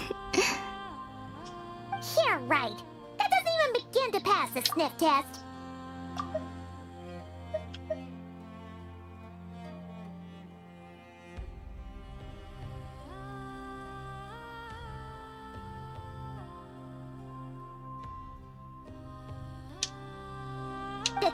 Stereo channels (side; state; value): both; identical; correlation 1.00